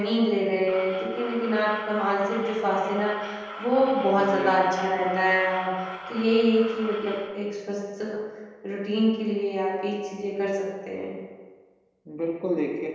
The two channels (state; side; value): identical; both; correlation 1.00